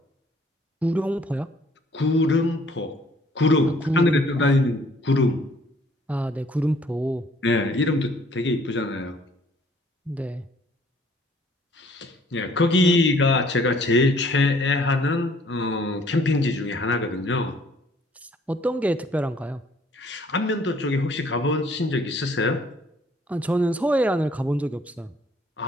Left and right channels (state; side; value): normal; both; correlation 0.59